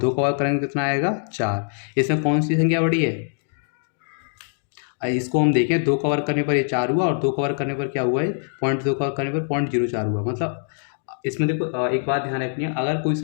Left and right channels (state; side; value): silent; right; digital silence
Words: का वर्ग करेंगे कितना आएगा, 4। इसमें कौन सी संख्या बड़ी है, इसको हम देखें, 2 का वर्ग करने पर ये 4 हुआ, और 2 का वर्ग करने पर क्या हुआ है, 0.2 का वर्ग करने पर 0.04 हुआ। मतलब इसमें देखो एक बात ध्यान रखनी है, अगर कोई